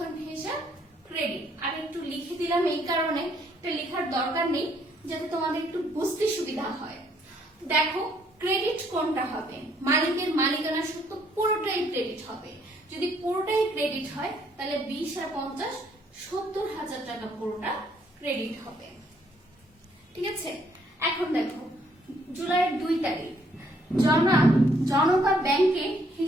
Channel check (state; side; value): normal; both; correlation 0.67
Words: হিসাব ক্রেডিট। আর একটু লিখে দিলাম এই কারণে, এটা লেখার দরকার নেই, যাতে তোমাদের একটু বুঝতে সুবিধা হয়। দেখো ক্রেডিট কোনটা হবে? মালিকের মালিকানা সত্ত্ব পুরোটাই ক্রেডিট হবে। যদি পুরোটাই ক্রেডিট হয় তাহলে 20 আর 50 70,000 টাকা পুরোটা ক্রেডিট হবে। ঠিক আছে, এখন দেখো জুলাইয়ের 2 তারিখ জনতা ব্যাংকে